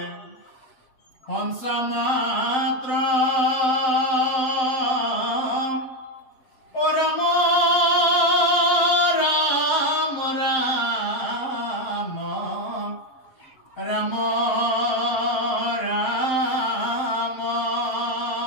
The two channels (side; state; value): right; late; 7.7 ms